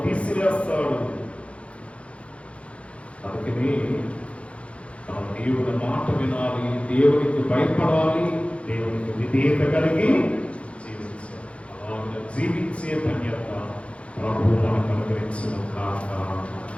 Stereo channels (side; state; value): right; late; 0.061 ms